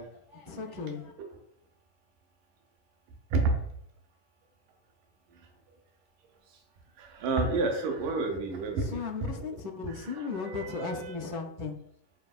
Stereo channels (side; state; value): left; late; 11 ms